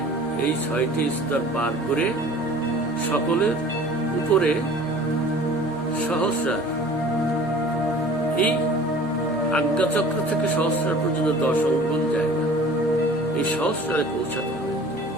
এই 6টি স্তর পার করে সকলের উপরে সহস্রার, এই আজ্ঞাচক্র থেকে সহস্রার পর্যন্ত 10 অঙ্গুল জায়গা, এই সহস্রারে পৌঁছাতে হবে।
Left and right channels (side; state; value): right; noise; hum, 24 dB below the sound